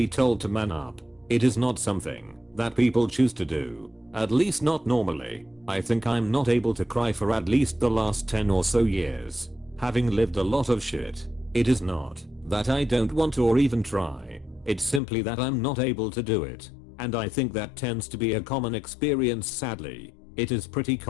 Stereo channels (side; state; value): right; drops out; at 15.0 s